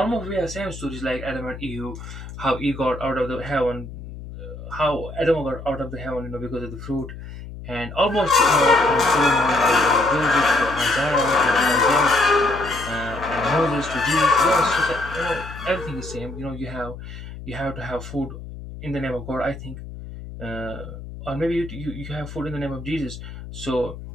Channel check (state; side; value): noise; left; hum, 12 dB below the sound